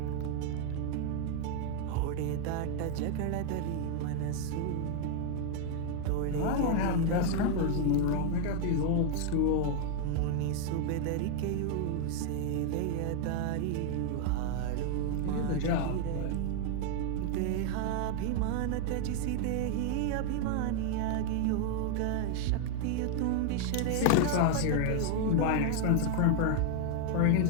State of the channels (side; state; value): both; different; correlation 0.00